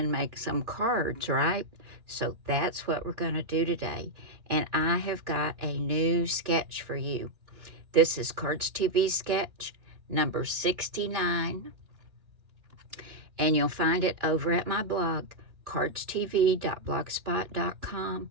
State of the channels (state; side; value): late; left; 2.9 ms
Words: make some cards, right? So that's what we're going to do today. And I have got a new sketch for you. This is Cardz TV Sketch number 69. And you'll find it over at my blog, cardztv.blogspot.com.